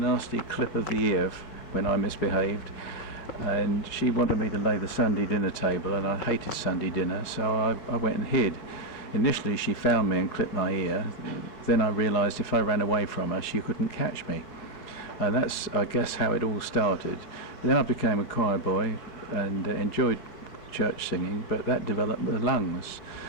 clip of the ear when I misbehaved, and she wanted me to lay the Sunday dinner table, and I hated Sunday dinner, so I went and hid. Initially she found me and clipped my ear. Then I realised if I ran away from her she couldn't catch me, and that's, I guess, how it all started. Then I became a choir boy and enjoyed church singing, but that developed the lungs.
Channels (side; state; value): right; late; 4.8 ms